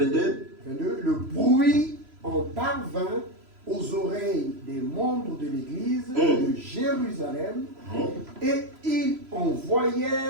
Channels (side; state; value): left; late; 3.0 ms